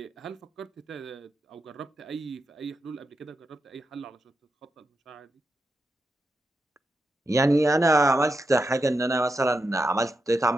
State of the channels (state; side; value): normal; both; correlation 0.87